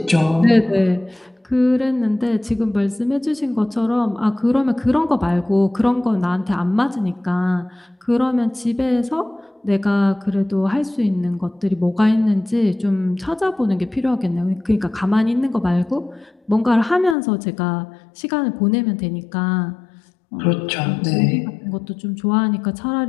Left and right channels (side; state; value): right; drops out; at 17.2 s